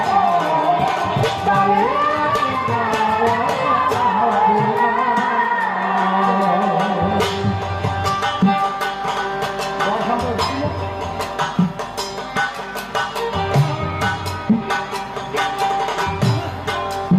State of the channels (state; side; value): identical; both; correlation 1.00